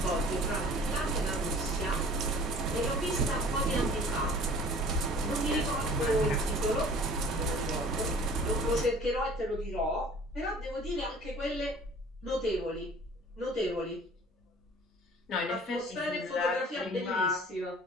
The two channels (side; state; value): both; normal; correlation 0.48